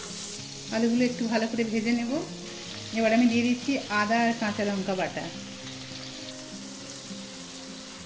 আলুগুলো একটু ভালো করে ভেজে নেব। এবার আমি দিয়ে দিচ্ছি আদা আর কাঁচা লঙ্কা বাটা,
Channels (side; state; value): both; identical; correlation 1.00